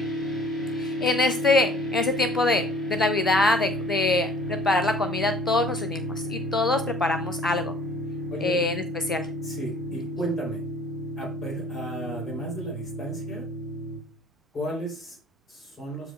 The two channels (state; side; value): normal; both; correlation 0.52